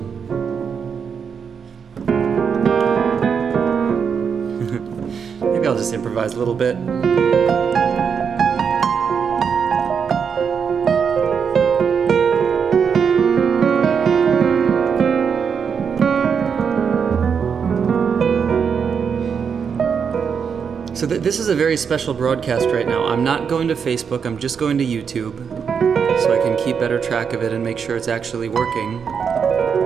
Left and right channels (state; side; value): quieter; left; 6.6 dB